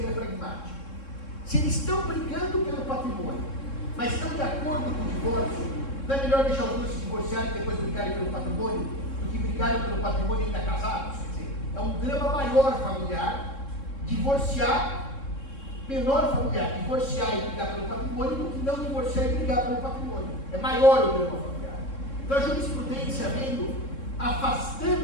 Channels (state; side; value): late; right; 3.7 ms